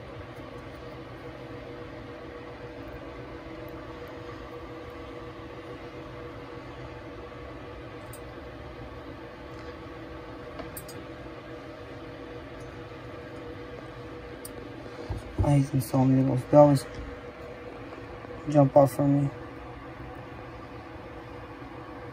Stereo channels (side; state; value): both; identical; correlation 1.00